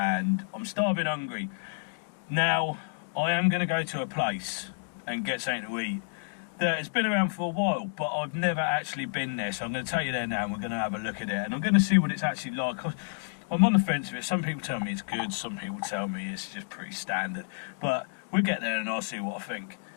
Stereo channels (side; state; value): right; silent; digital silence